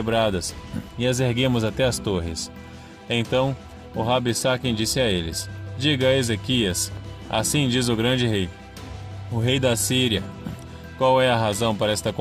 e as erguemos até as torres. Então, o Rabsaken disse a eles: diga a Ezequias, assim diz o grande rei, o rei da Síria, qual é a razão para esta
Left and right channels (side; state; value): both; identical; correlation 1.00